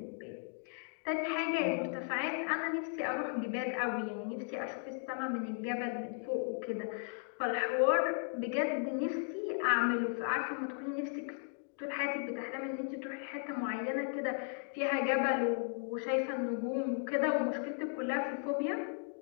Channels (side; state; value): right; silent; 54 dB below the other